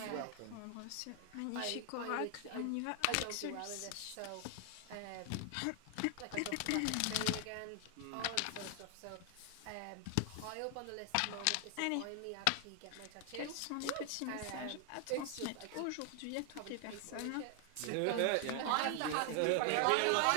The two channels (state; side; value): different; both; correlation 0.00